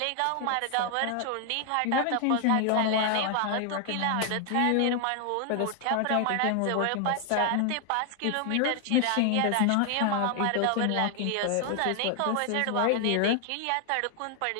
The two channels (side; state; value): both; different; correlation 0.00